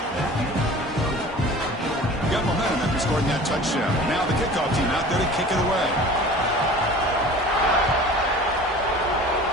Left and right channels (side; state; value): both; normal; correlation 0.42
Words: Got momentum after scoring that touchdown. Now the kickoff team out there to kick it away.